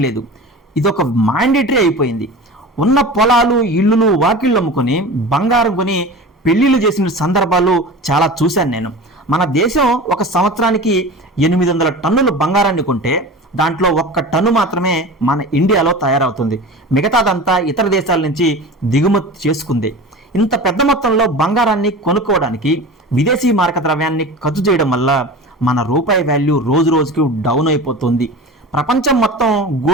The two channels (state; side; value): normal; both; correlation 0.34